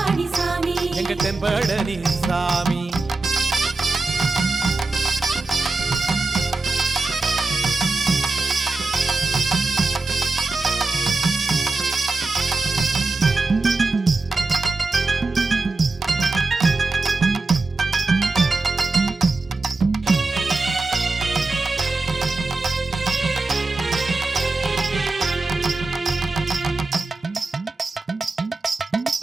சாமி எங்க தென்பழனி சாமி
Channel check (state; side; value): quieter; left; 3.5 dB